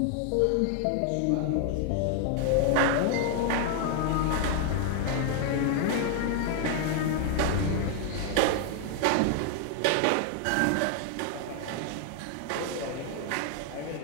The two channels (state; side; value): different; both; correlation 0.00